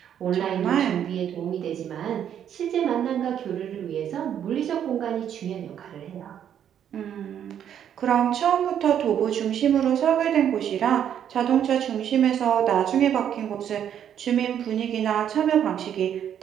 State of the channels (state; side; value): quieter; left; 9.4 dB